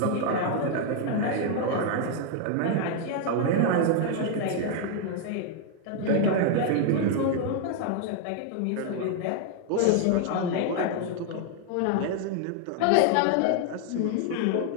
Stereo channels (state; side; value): different; both; correlation 0.00